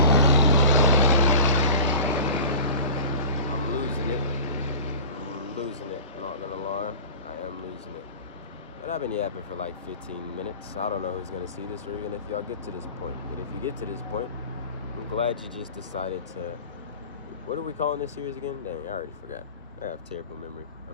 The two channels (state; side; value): inverted; both; correlation -0.38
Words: I'm losing it, not gonna lie. I am losing it. But I've been yapping for like 15 minutes. I don't know who's gonna see this, or even if y'all get to this point. But if you get to this point, I'm glad you just decided to... What are we calling this series again? Dang, I already forgot. I have terrible memory.